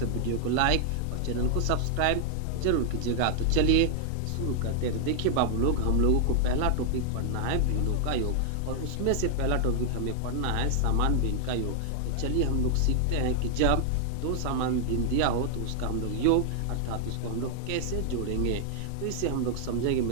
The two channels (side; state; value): both; different; correlation 0.00